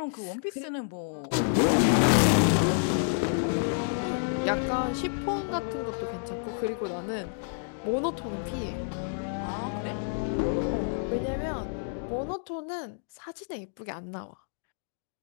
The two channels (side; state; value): right; silent; digital silence